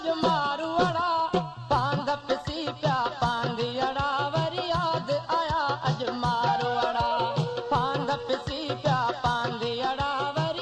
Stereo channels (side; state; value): both; identical; correlation 1.00